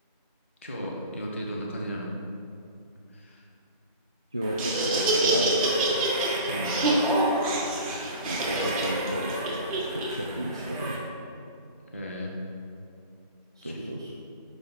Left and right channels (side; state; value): both; inverted; correlation -0.35